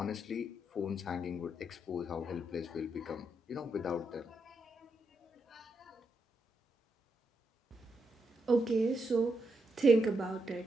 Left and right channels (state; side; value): normal; both; correlation 0.82